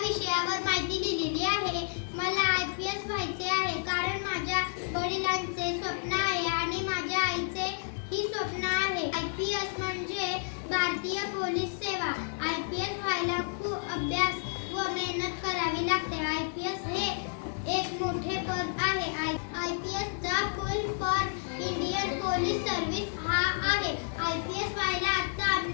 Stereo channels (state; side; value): silent; right; digital silence